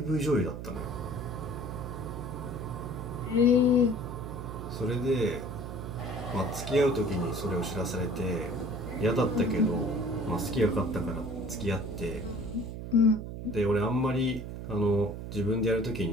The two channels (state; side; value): noise; right; hum, 8 dB below the sound